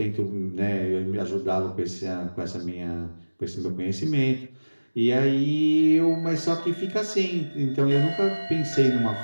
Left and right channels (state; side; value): inverted; both; correlation -1.00